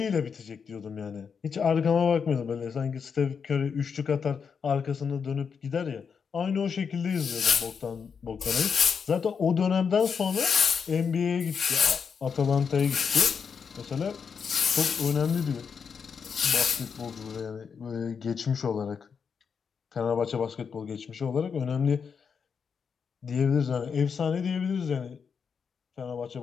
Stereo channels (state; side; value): quieter; right; 6.3 dB